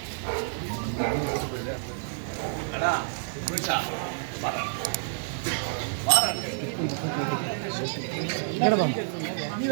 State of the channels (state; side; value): silent; left; digital silence